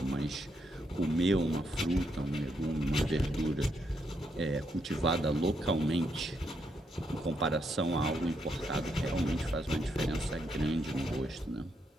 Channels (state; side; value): normal; both; correlation 0.78